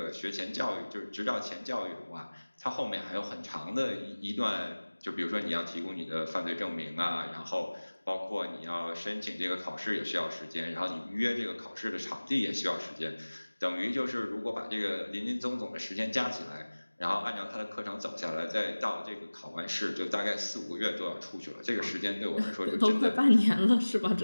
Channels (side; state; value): both; inverted; correlation -1.00